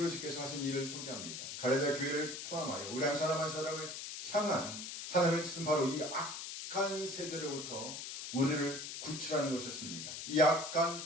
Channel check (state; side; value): noise; left; hiss, 7 dB below the sound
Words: 하신 일을 소개합니다. 갈라디아 교회를 포함하여 우리 한 사람 한 사람을 향한 하나님의 뜻은 바로 이 악한 세대로부터 우리를 구출하는 것이었습니다. 이